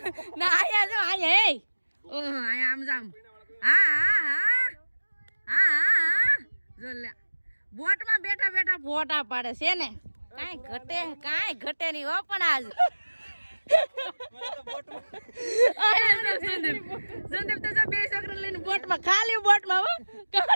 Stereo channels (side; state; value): both; inverted; correlation -1.00